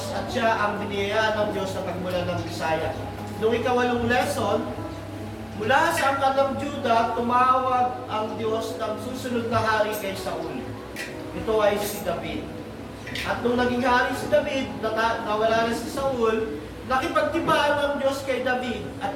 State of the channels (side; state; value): both; identical; correlation 1.00